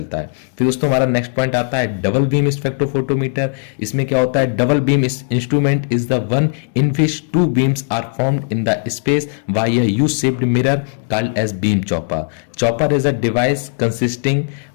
है। फिर दोस्तों हमारा नेक्स्ट पॉइंट आता है डबल बीम स्पेक्ट्रोफोटोमीटर। इसमें क्या होता है, double beam instrument is the one in which two beams are formed in the space by a U-shaped mirror called as beam chopper. Chopper is a device consisting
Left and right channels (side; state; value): right; silent; 65 dB below the other